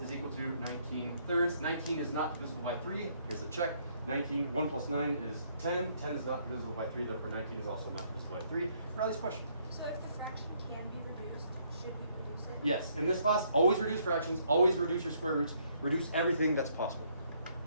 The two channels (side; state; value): both; inverted; correlation -0.69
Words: is equal to 19 thirds. 19 is not divisible by 3. Here's the check. 19, 1 plus 9 is 10. 10 is not divisible by 3, therefore 19 is also not divisible by 3. Riley's question. So if the fraction can be reduced, should we reduce it? Yes, in this class, always reduce fractions, always reduce your square roots, reduce everything that's possible.